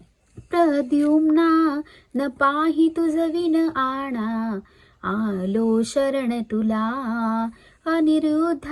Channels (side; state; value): both; identical; correlation 1.00